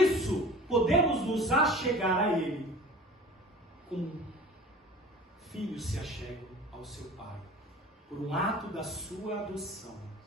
podemos nos achegar a Ele como filhos se achegam ao seu Pai, por um ato da sua adoção.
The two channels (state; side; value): normal; both; correlation 0.42